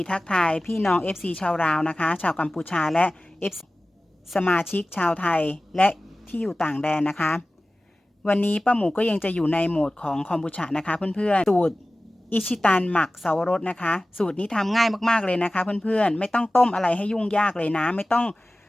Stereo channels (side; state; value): both; normal; correlation 0.97